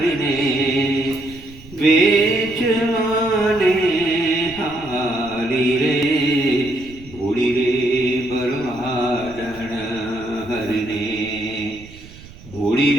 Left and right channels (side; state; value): right; noise; rumble, 20 dB below the sound